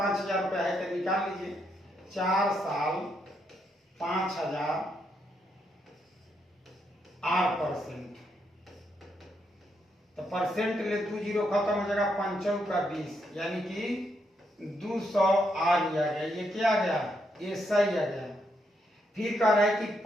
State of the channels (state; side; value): normal; both; correlation 0.78